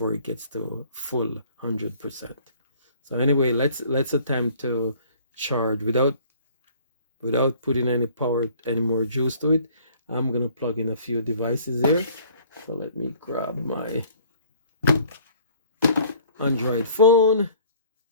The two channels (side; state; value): both; inverted; correlation -0.54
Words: it gets to full 100%. So anyway, let's attempt to charge without putting any power, any more juice to it. I'm going to plug in a few devices here. So let me grab my Android phone,